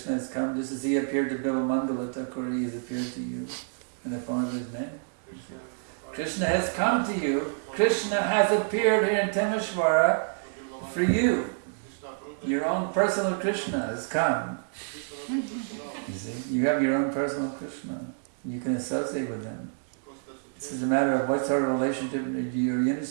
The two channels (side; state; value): left; silent; digital silence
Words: has come just as he appeared to Vivamangal Thakur, he has appeared to you in the form of his name. Krishna has come to you. Krishna has appeared here in Timisoara for you. Your own personal Krishna has come. You see, you have your own personal Krishna. You can associate with him. It's just a matter of what sort of relationship you're